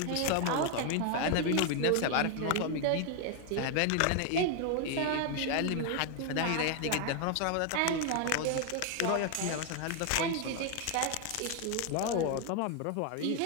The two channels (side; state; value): both; different; correlation 0.01